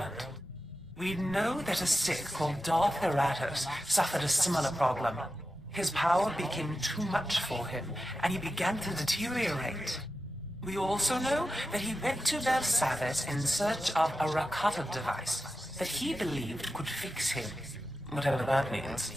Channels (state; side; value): normal; both; correlation 0.91